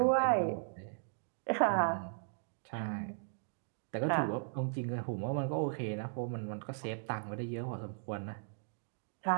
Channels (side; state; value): left; silent; digital silence